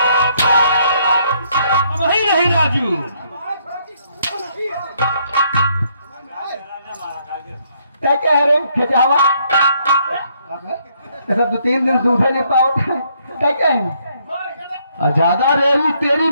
वही नहीं राजू। क्या कह रहे खिंचावा ऐसा 2-3 दिन सूखे नहीं पाओ क्या कहें? ज्यादा रेवी तेरी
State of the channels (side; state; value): both; inverted; correlation -0.70